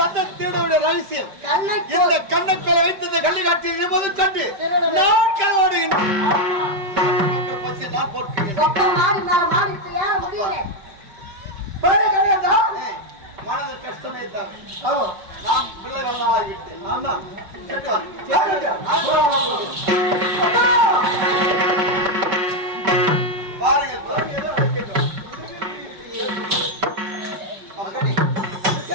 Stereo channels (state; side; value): late; left; 5.1 ms